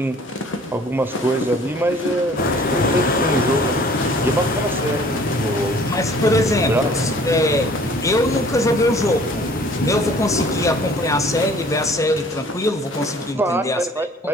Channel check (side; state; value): both; normal; correlation 0.53